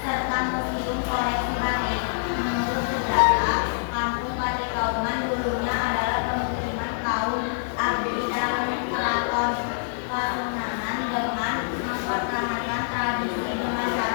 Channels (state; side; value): silent; right; 61 dB below the other